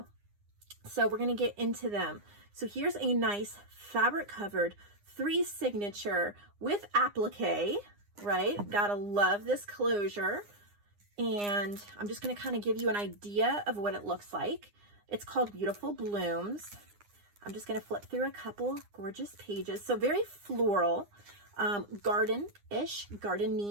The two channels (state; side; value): late; left; 9.8 ms